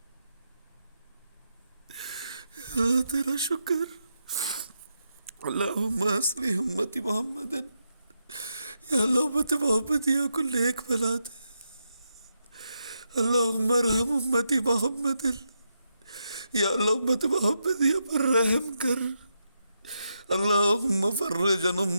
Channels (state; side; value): inverted; both; correlation -0.84